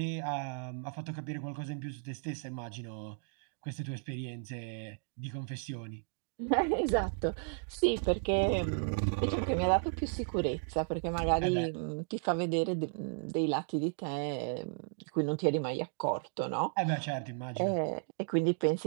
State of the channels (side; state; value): left; silent; 55 dB below the other